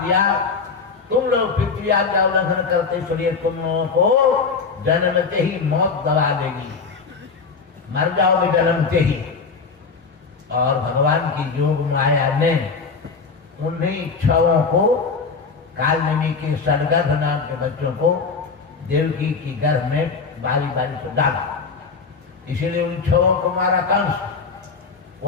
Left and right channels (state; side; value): quieter; right; 4.9 dB